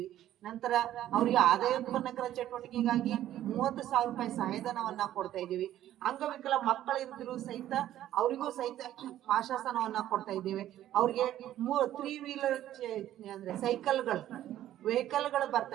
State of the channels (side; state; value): left; quieter; 12.6 dB